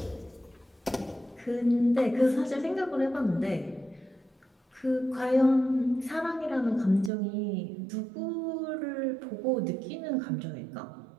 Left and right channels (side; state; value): left; drops out; at 7.1 s